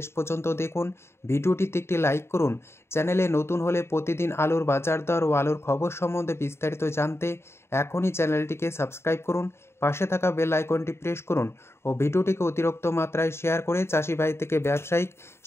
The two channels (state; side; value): late; right; 0.12 ms